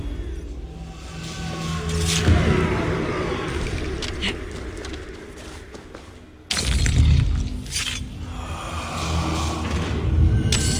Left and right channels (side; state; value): both; identical; correlation 1.00